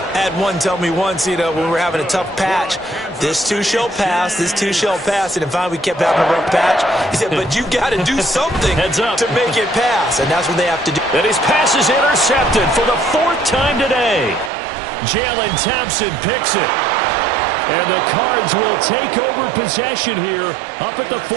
I had one tell me once, when we were having a tough patch, this too shall pass, this too shall pass. And finally we kept having a rough patch. He said, but you got to do something Heads up. to make it pass. And that's what they have to do. And his pass is intercepted for the 4th time today. Jalen Thompson picks it. And the Cards will take over possession here up at the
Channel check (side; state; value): left; drops out; at 14.5 s